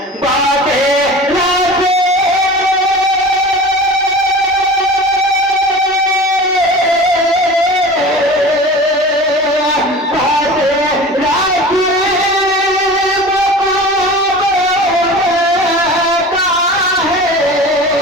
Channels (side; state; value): both; normal; correlation 0.36